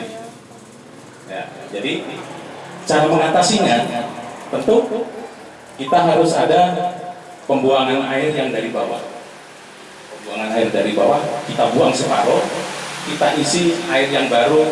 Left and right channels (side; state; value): both; identical; correlation 1.00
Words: Ya, jadi cara mengatasinya tentu kita harus ada pembuangan air yang dari bawah. Pembuangan air dari bawah kita buang separuh, kita isi air yang